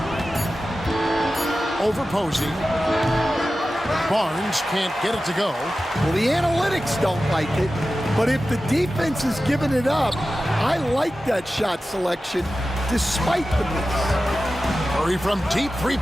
Over Posey. Barnes can't get it to go. Well, the analytics don't like it, but if the defense is giving it up, I like that shot selection despite the miss. Curry from deep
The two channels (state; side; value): normal; both; correlation 0.94